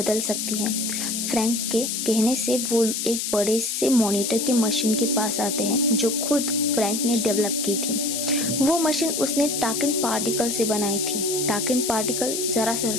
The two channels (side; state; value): left; noise; hiss, 2 dB below the sound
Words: सकती है। फ्रैंक के कहने से वो एक बड़े से मॉनिटर के मशीन के पास आते हैं जो खुद फ्रैंक ने डेवलप की थी। वो मशीन उसने टाकिन पार्टिकल से बनाई थी। टाकिन पार्टिकल जरा सा